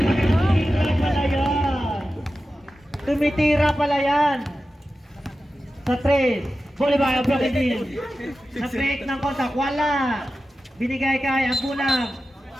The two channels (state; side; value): normal; both; correlation 0.93